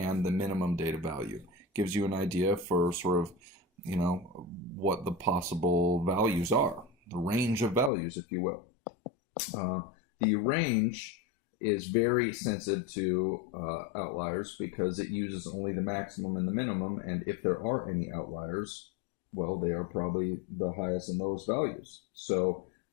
the minimum data value. Gives you an idea for sort of, what the possible values are. The range of values, if you will. The range is very sensitive to outliers because it uses only the maximum and the minimum, and if there are any outliers, well, they are probably the highest and lowest values. So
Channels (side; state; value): right; drops out; at 7.9 s